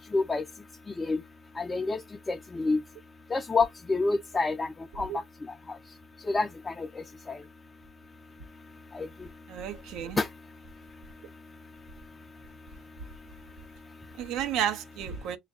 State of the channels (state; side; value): normal; both; correlation 0.82